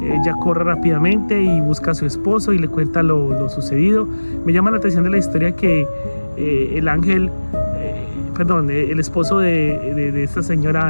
Ella corre rápidamente y busca a su esposo y le cuenta lo sucedido. Me llama la atención de la historia que el esposo de esta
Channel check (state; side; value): inverted; both; correlation -1.00